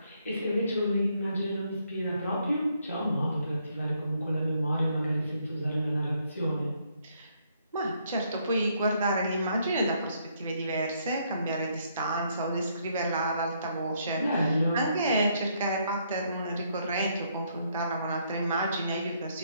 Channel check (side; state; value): both; inverted; correlation -0.71